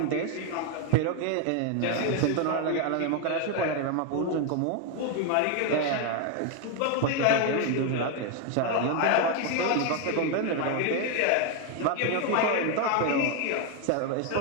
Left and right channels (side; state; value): both; different; correlation 0.01